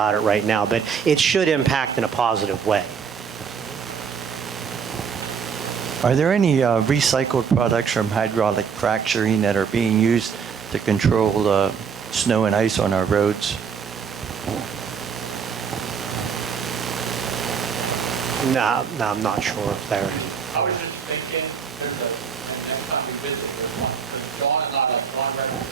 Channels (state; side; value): quieter; left; 6.6 dB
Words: it right now. But it should impact in a positive way. Are there any recycled products from hydraulic fracturing that are being used to control snow and ice on our roads? No, I'm not sure if they're. I was just thinking, next time we visit, Dawn and not like Dawn